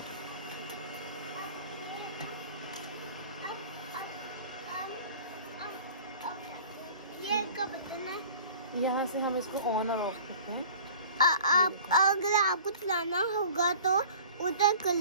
ये का बटन है। यहाँ से हम इसको ऑन और ऑफ करते हैं। आप अगर आपको चलाना होगा तो उधर कर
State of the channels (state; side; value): inverted; both; correlation -0.44